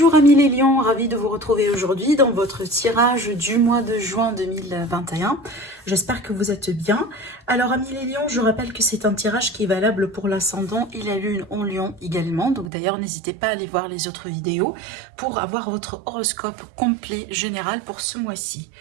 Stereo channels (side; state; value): left; drops out; at 12.7 s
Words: amis les lions, ravi de vous retrouver aujourd'hui dans votre tirage du mois de juin 2021. J'espère que vous êtes bien. Alors amis les lions, je rappelle que c'est un tirage qui est valable pour l'ascendant et la lune en lion également. Donc d'ailleurs n'hésitez pas à aller voir les autres vidéos pour avoir votre horoscope complet général pour ce mois-ci.